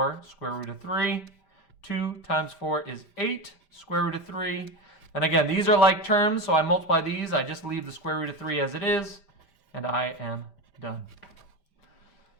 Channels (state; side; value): late; right; 5.0 ms